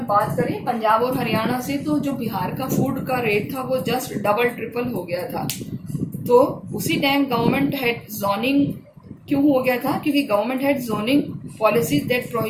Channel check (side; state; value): both; identical; correlation 1.00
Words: बात करें पंजाब और हरियाणा से, तो जो बिहार का फूड का रेट था वो जस्ट डबल ट्रिपल हो गया था। तो उसी टाइम गवर्नमेंट हैड जोनिंग क्यों हो गया था, क्योंकि government had zoning policies that